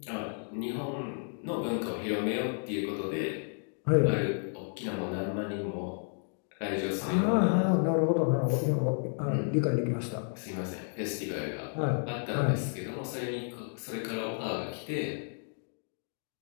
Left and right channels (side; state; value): right; silent; 56 dB below the other